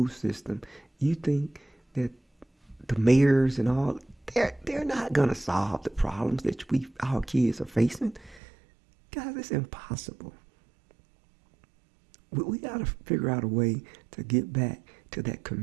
system, you think that the mayors and all, they're not going to solve the problems that our kids are facing. Guys, it's impossible. We got to figure out a way to get back to that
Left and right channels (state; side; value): drops out; left; at 8.4 s